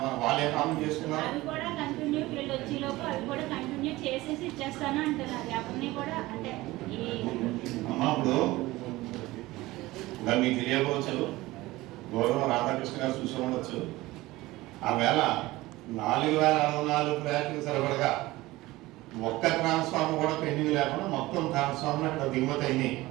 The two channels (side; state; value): left; quieter; 19.0 dB